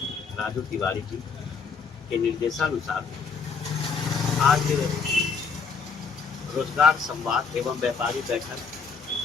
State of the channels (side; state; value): right; quieter; 5.3 dB